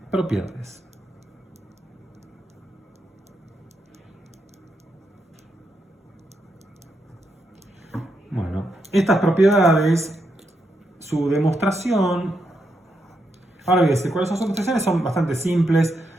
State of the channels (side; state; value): both; normal; correlation 0.82